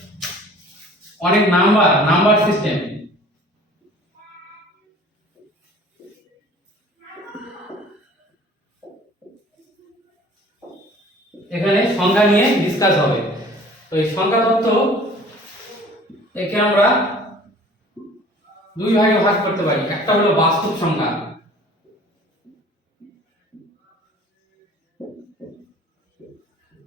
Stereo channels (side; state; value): both; normal; correlation 0.49